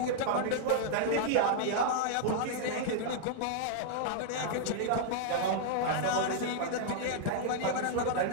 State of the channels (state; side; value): different; both; correlation -0.01